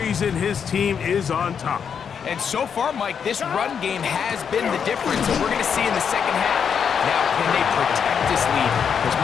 his team is on top. And so far, Mike, this run game has been the difference, and we're going to see in the second half. Now, can they protect this lead? Because,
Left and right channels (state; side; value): quieter; right; 7.2 dB